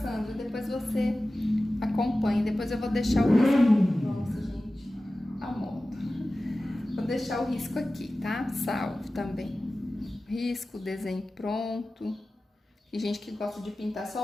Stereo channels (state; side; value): normal; both; correlation 0.96